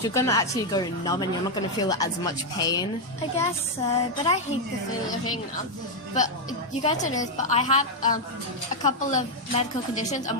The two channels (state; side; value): normal; both; correlation 0.01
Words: you're gonna actually go numb, and you're not gonna feel as much pain. I guess so, but I hate the feeling of being numb. But you guys don't know this, but I have a couple of medical conditions,